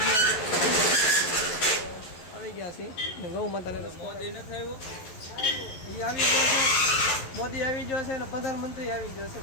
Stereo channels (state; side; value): late; right; 11 ms